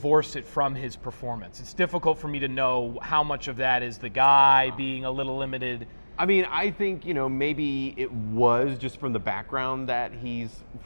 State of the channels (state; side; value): inverted; both; correlation -1.00